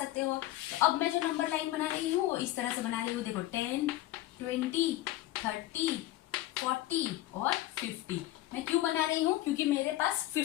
हो। तो अब मैं जो नंबर लाइन बना रही हूँ वो इस तरह से बना रही हूँ, देखो 10, 20, 30, 40 और 50। मैं क्यों बना रही हूँ, क्योंकि मेरे पास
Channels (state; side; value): quieter; right; 15.8 dB